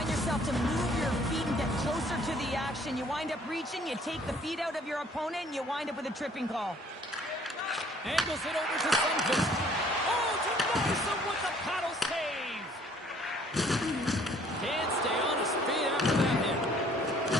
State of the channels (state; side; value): normal; both; correlation 0.59